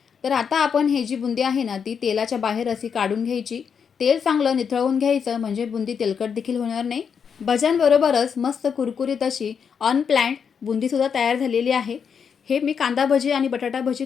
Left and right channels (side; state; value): right; quieter; 6.8 dB